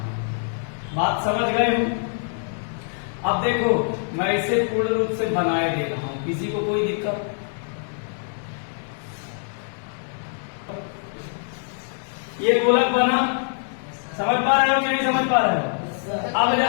बात समझ गए हो? अब देखो, मैं इसे पूर्ण रूप से बनाए दे रहा हूं। किसी को कोई दिक्कत? ये गोलक बना। समझ पा रहे हो कि नहीं समझ पा रहे हो? अब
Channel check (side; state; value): right; silent; digital silence